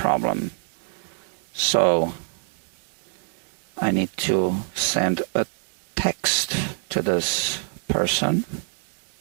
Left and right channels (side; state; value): left; silent; 60 dB below the other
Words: So, I need to send a text to this person